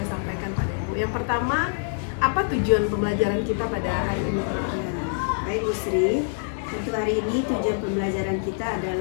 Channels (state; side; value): silent; right; digital silence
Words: sampaikan pada Ibu. Yang pertama, apa tujuan pembelajaran kita pada hari ini? Baik Bu Sri, untuk hari ini tujuan pembelajaran kita